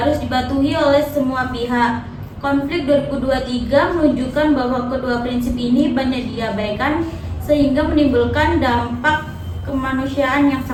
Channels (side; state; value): both; identical; correlation 1.00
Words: dipatuhi oleh semua pihak. Konflik 2023 menunjukkan bahwa kedua prinsip ini banyak diabaikan sehingga menimbulkan dampak kemanusiaan yang